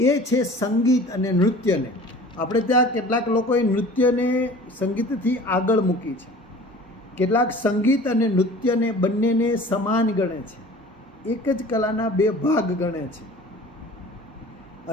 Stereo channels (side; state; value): both; normal; correlation 0.44